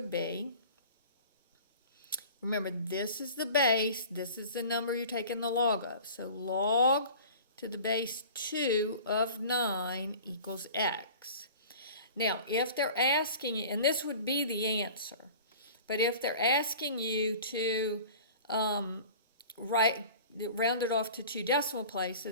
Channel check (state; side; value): inverted; both; correlation -0.42